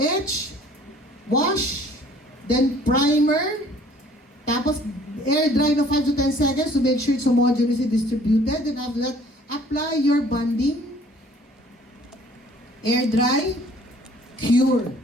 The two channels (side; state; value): both; normal; correlation 0.55